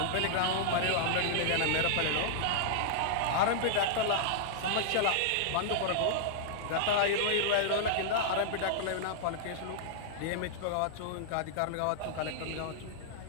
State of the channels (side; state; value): both; different; correlation -0.01